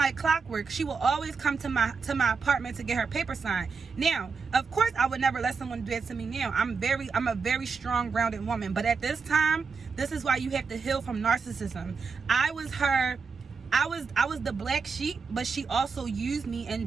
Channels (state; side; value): quieter; left; 5.1 dB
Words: clockwork. She would always come to my apartment to get her paper signed. Now, of course, I would never let someone do that to me now. I'm a very strong, grounded woman. But at this time, this is why you have to heal from narcissism. I was the black sheep, but she also used me and